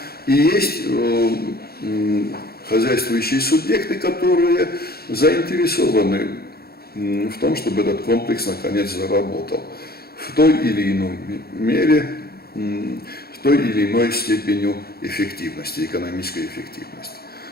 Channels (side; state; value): right; late; 0.45 ms